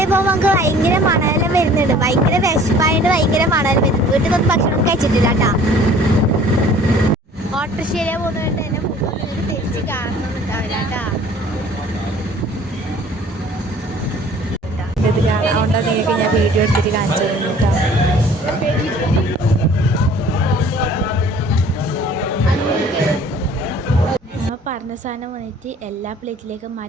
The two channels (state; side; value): normal; both; correlation 0.51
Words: പോകുമ്പോൾ നമുക്ക് ഭയങ്കര മണലെല്ലാം വരുന്നുണ്ട്. ഭയങ്കര വിശപ്പായിട്ട് ഭയങ്കര മണൽ വരുന്നു. വീട്ടിൽ നിന്ന് ഭക്ഷണം കഴിച്ചിട്ടില്ല കേട്ടോ. ഓട്ടോറിക്ഷയിലെ പോകുന്നതുകൊണ്ട് തന്നെ നിങ്ങൾക്ക് തിരിച്ച് കാണണമെന്നുണ്ടാവില്ല കേട്ടോ. അതുകൊണ്ട് നിങ്ങൾക്ക് ഞാൻ വീഡിയോ എടുത്തിട്ട് കാണിച്ചു തരുന്നു കേട്ടോ. നമ്മൾ പറഞ്ഞ സാധനം വന്നിട്ട് എല്ലാ പ്ലേറ്റിലേക്കും